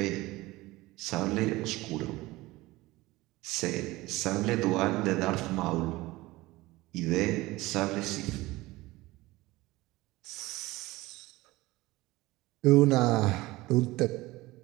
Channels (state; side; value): quieter; left; 19.7 dB